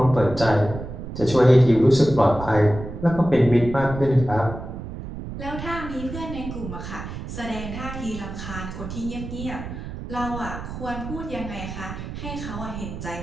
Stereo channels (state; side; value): noise; right; rumble, 9 dB below the sound